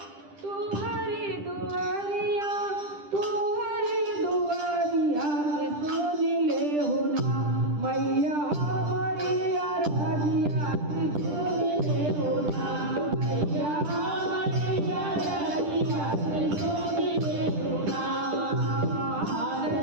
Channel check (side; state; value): left; late; 10 ms